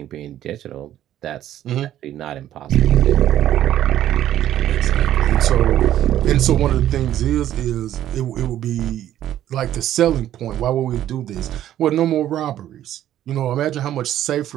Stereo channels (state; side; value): quieter; left; 12.1 dB